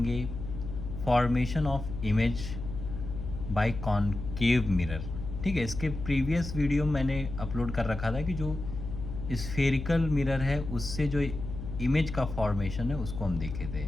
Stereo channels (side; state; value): left; noise; hum, 8 dB below the sound